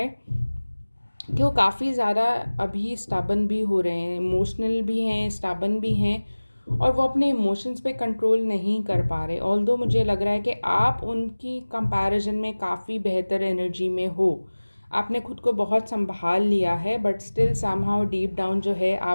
कि वो काफ़ी ज़्यादा अभी स्टबन भी हो रहे हैं, इमोशनल भी हैं, स्टबन भी हैं, और वो अपने इमोशंस पे कंट्रोल नहीं कर पा रहे। ऑल्दो मुझे लग रहा है कि आप उनकी कंपैरिजन में काफ़ी बेहतर एनर्जी में हो, आपने खुद को बहुत संभाल लिया है, but still somehow deep down जो है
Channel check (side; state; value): both; inverted; correlation -1.00